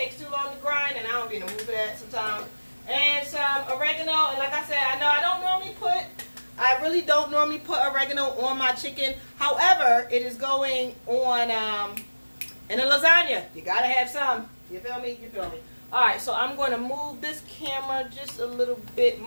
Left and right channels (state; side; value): inverted; both; correlation -1.00